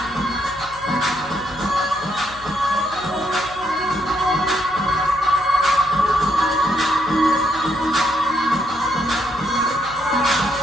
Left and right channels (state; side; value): noise; left; hum, 20 dB below the sound